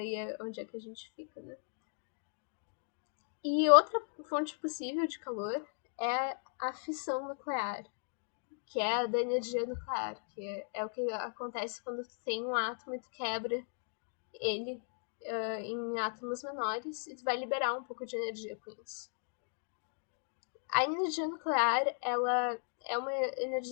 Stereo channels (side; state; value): right; silent; digital silence